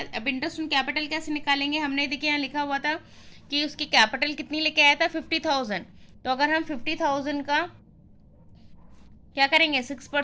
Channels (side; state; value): both; identical; correlation 1.00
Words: अब इंटरेस्ट ऑन कैपिटल कैसे निकालेंगे, हमने देखिए यहाँ लिखा हुआ था कि उसकी कैपिटल कितनी लेके आया था 50,000. तो अगर हम 50,000 का क्या करेंगे